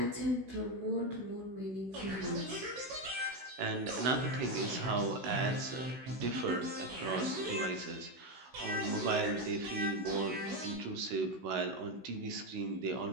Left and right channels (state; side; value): late; left; 16 ms